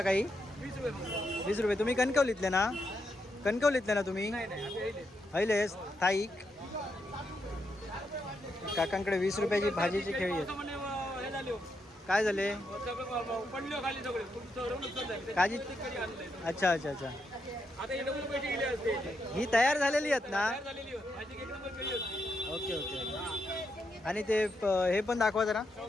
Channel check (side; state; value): both; normal; correlation 0.82